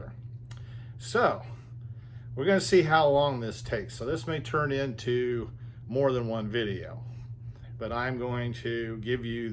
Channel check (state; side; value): identical; both; correlation 1.00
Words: So, we're going to see how long this takes. So this may turn into more than one video, but I'm going to give you